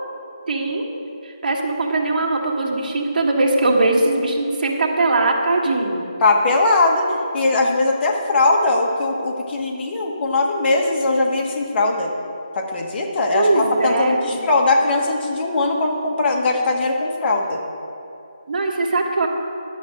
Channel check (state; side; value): inverted; both; correlation -0.72